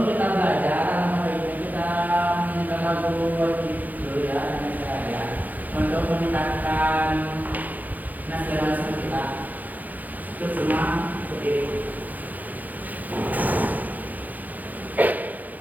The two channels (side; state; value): left; late; 0.082 ms